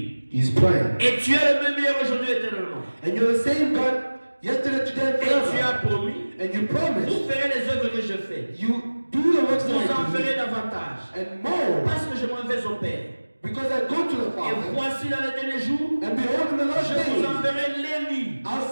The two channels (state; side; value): inverted; both; correlation -1.00